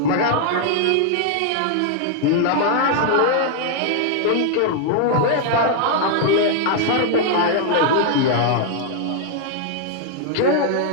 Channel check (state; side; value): different; both; correlation 0.00